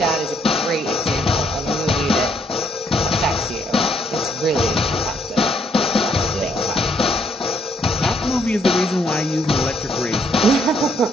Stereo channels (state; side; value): normal; both; correlation 0.70